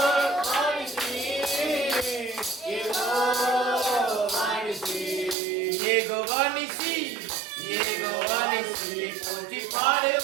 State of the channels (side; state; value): left; drops out; at 5.4 s